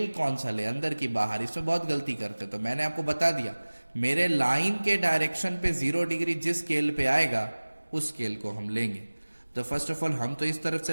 कौन सा ले, अंदर की बाहर. इसमें बहुत गलती करते. तो मैंने आपको बता दिया, मेरे लाइन के डायरेक्शन पे 0 डिग्री जिस स्केल पे आएगा उस स्केल को हम लेंगे. तो फर्स्ट ऑफ ऑल हम तो इस तरफ से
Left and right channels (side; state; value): both; inverted; correlation -1.00